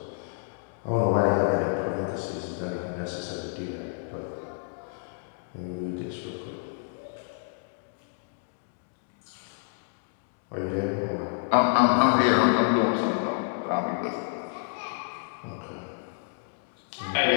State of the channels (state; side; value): silent; right; digital silence